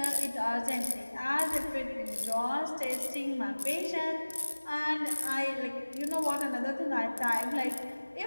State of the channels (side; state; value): both; inverted; correlation -1.00